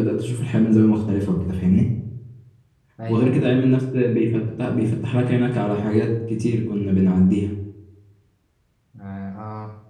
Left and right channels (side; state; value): both; identical; correlation 1.00